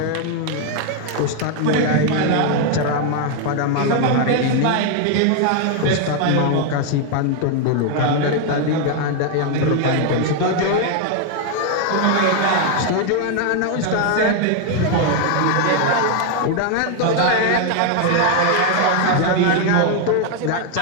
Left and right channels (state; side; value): different; both; correlation 0.00